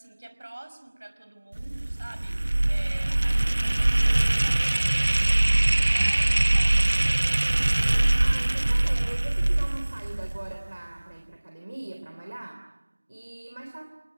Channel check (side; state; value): both; inverted; correlation -1.00